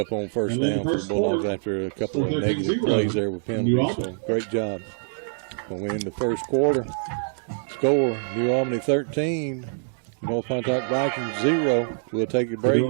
on first down for the Bulldogs after a couple of negative plays there with penalties. So great job. We'll win the first quarter. Score, New Albany 13, North Pontotoc Vikings 0. We'll take a break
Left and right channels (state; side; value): silent; left; digital silence